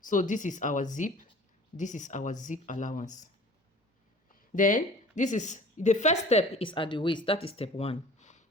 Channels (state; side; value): normal; both; correlation 0.46